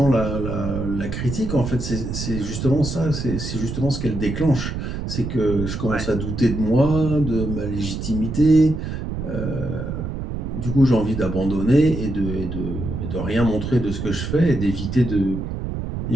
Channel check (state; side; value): noise; right; rumble, 5 dB below the sound